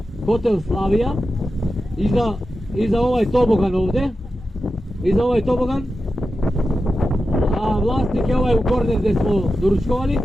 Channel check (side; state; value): both; normal; correlation 0.91